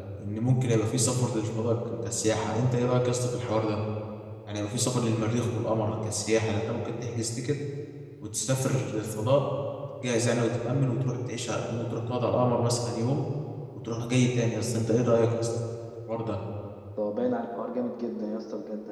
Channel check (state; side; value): identical; both; correlation 1.00